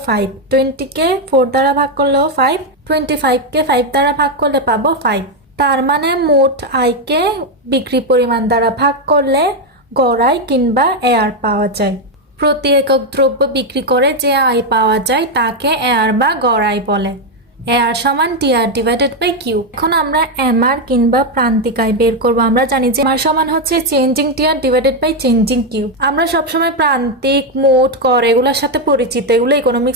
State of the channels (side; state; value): both; normal; correlation 0.04